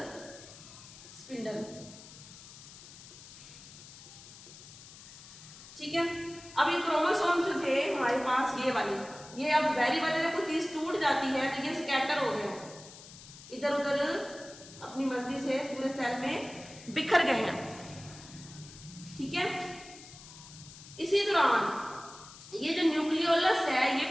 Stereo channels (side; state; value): left; noise; hiss, 17 dB below the sound